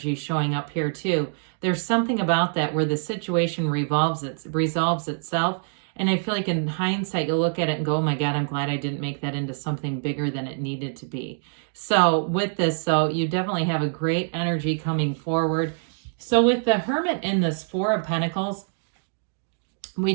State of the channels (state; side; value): silent; left; digital silence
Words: showing up here too, there's something about that where the situation resolves itself. And I feel like in hindsight, you'll look at it and go, oh my God, I'm glad I didn't make that into something bigger than it needed to be. So with this, you definitely have a great energy coming forward. So with the Hermit in this Four of Pentacles, we